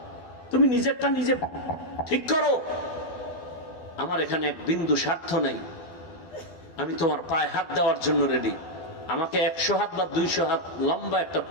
তুমি নিজেরটা নিজে ঠিক করো। আমার এখানে এক বিন্দু স্বার্থ নেই, আমি তোমার পায়ে হাত দেওয়ার জন্য রেডি। আমাকে 100 হাত বা 200 হাত লম্বা একটা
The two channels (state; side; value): late; right; 12 ms